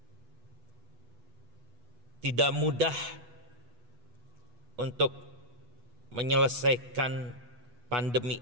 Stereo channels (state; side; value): late; left; 8.2 ms